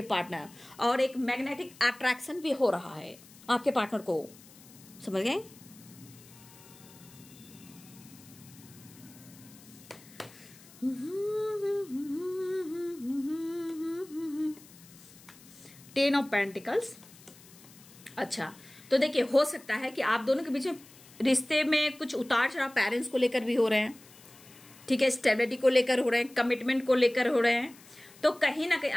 पार्टनर, और एक मैग्नेटिक अट्रैक्शन भी हो रहा है आपके पार्टनर को। समझ गए? Ten of pentacles. अच्छा, तो देखिए हो सकता है कि आप दोनों के बीच में रिश्ते में कुछ उतार चढ़ाव पेरेंट्स को लेकर भी हो रहे हैं। ठीक है, स्टेबिलिटी को लेकर हो रहे हैं, कमिटमेंट को लेकर हो रहे हैं। तो कहीं ना कहीं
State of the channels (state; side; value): noise; left; hiss, 22 dB below the sound